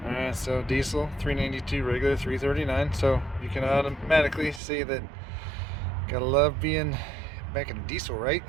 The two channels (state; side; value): drops out; left; at 4.6 s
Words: Alright, so diesel 392, regular 339. So you can automatically see that gotta love being back in diesel, right?